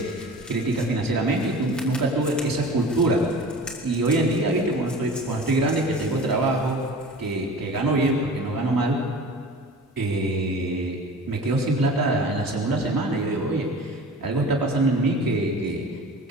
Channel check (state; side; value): normal; both; correlation 0.39